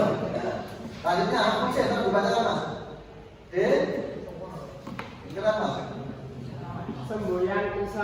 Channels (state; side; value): identical; both; correlation 1.00